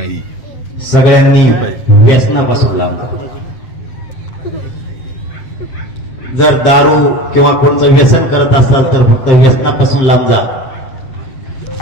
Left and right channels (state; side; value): late; right; 7.5 ms